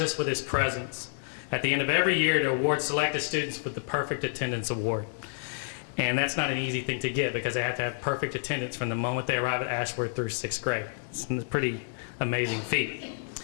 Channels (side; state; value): right; silent; digital silence